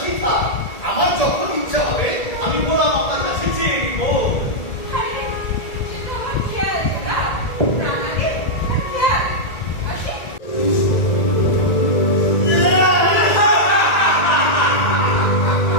থাক, আমার যখন ইচ্ছা হবে আমি গোলাম আপনার কাছে চেয়ে নিব।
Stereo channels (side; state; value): right; late; 1.9 ms